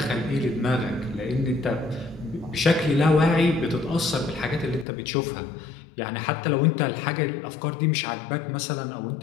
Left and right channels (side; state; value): right; drops out; at 4.9 s